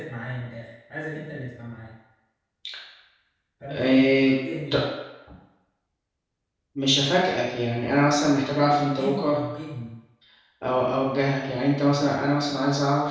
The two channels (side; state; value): both; identical; correlation 1.00